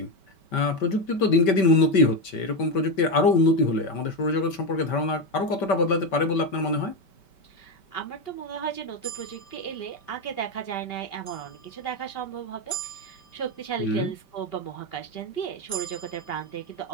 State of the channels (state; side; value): late; right; 5.2 ms